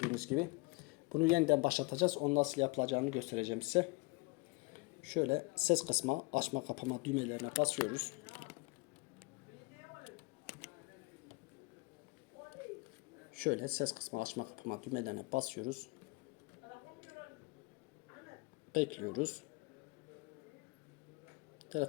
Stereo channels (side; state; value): right; quieter; 26.3 dB